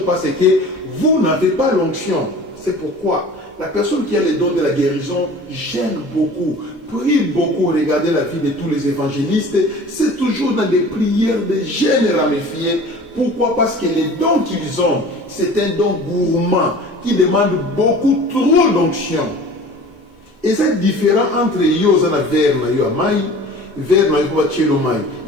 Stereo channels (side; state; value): both; normal; correlation 0.43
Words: parce que vous n'avez pas l'onction. C'est pourquoi la personne qui a les dons de la guérison gêne beaucoup, prie beaucoup. Regardez la vie de tous les évangélistes, c'est toujours dans des prières de gêne ramifiées. Pourquoi? Parce que les dons qu'ils ont, c'est un don gourmand qui demande beaucoup trop d'onction. Et c'est différent entre Yozana Verna Yoamai, Verna Yoamai,